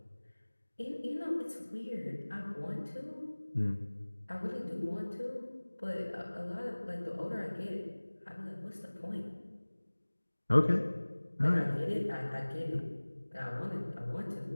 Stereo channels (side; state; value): both; inverted; correlation -1.00